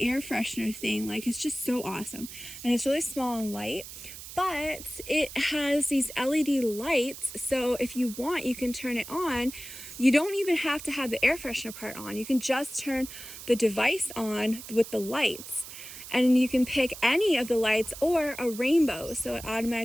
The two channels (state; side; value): noise; right; hiss, 13 dB below the sound